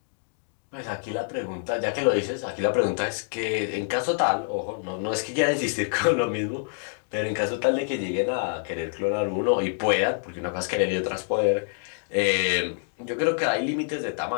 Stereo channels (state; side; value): silent; right; digital silence